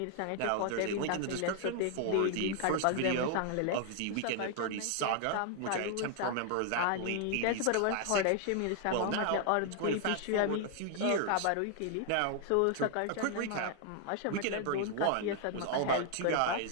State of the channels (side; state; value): both; different; correlation 0.00